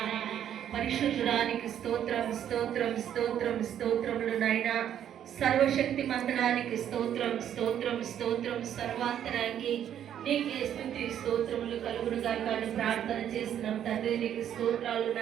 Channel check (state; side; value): quieter; left; 10.0 dB